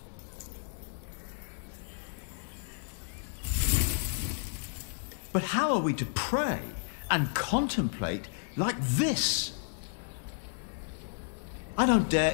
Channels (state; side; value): silent; right; digital silence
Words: But how are we to pray and contemplate like this? I don't dare